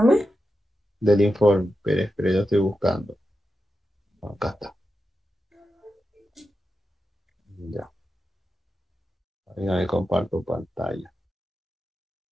del informe. Pero yo estoy buscando. Acá está. Ya. Venga, me comparto pantalla.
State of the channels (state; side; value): normal; both; correlation 0.90